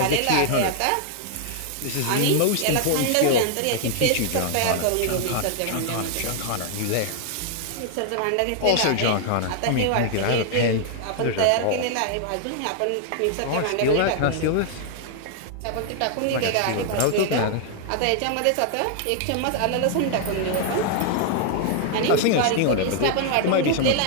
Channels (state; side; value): different; both; correlation 0.00